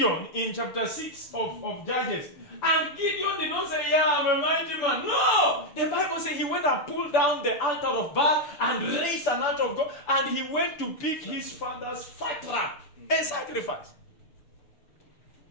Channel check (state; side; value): late; right; 6.9 ms